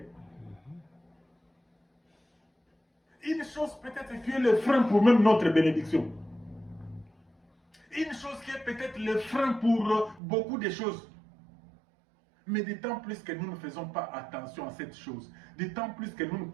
Une chose peut-être qui est le frein pour même notre bénédiction. Une chose qui est peut-être le frein pour beaucoup de choses. Mais d'autant plus que nous ne faisons pas attention à cette chose, d'autant plus que nous ne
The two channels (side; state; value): left; drops out; at 10.2 s